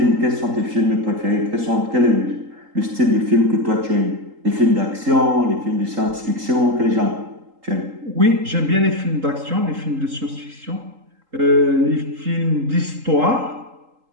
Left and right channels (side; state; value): left; late; 3.8 ms